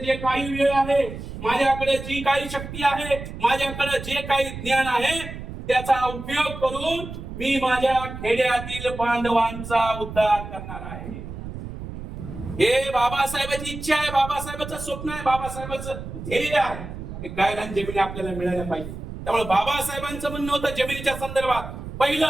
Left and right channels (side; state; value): right; noise; rumble, 10 dB below the sound